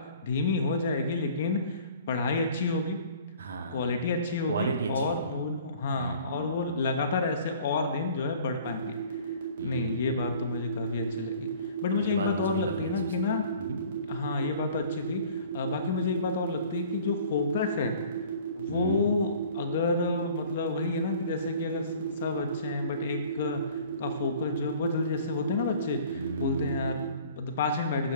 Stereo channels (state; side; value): inverted; both; correlation -0.50